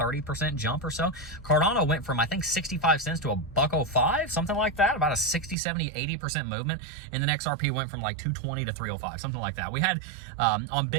jump or so. Cardano went from, I think, 65 cents to a $1.05, something like that. About a 60, 70, 80% movement. And then XRP went from like 220 to 305, something like that. We had on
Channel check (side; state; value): left; drops out; at 5.6 s